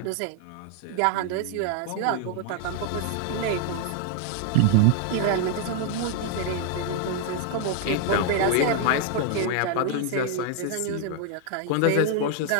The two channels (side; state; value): both; different; correlation 0.00